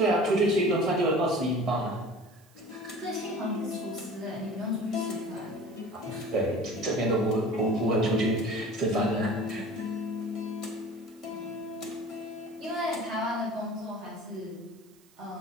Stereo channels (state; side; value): noise; right; hiss, 29 dB below the sound